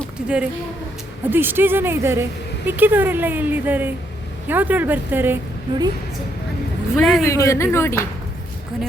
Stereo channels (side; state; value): both; normal; correlation 0.74